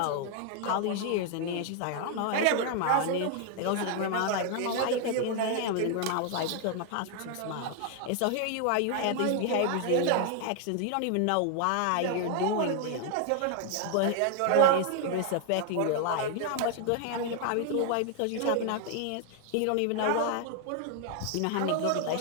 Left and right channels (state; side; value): different; both; correlation 0.00